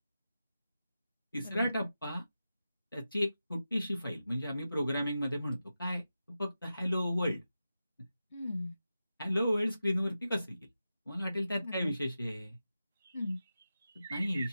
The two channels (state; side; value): inverted; both; correlation -0.91